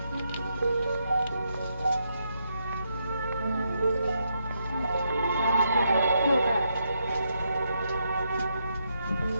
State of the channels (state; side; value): inverted; both; correlation -0.79